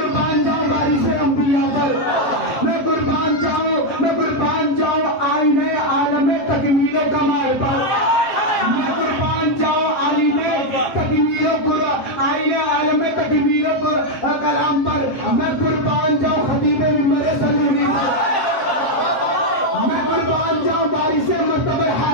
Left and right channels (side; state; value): right; late; 7.5 ms